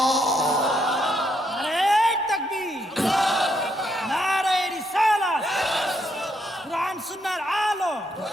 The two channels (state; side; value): normal; both; correlation 0.76